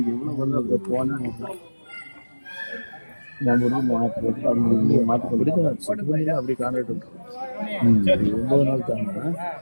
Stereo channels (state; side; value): inverted; both; correlation -1.00